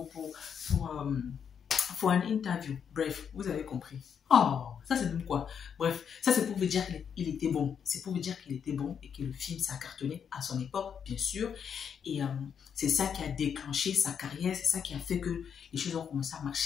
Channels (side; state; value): right; quieter; 7.5 dB